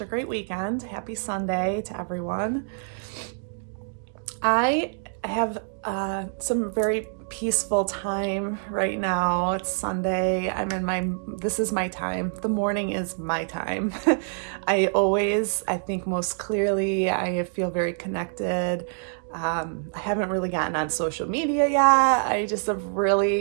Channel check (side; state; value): left; silent; digital silence